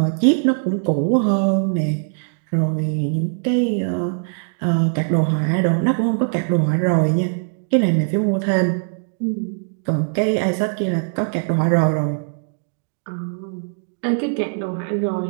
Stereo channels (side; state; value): left; silent; digital silence